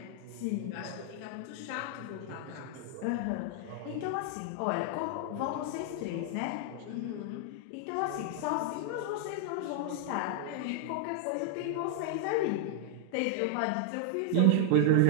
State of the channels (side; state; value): both; different; correlation 0.00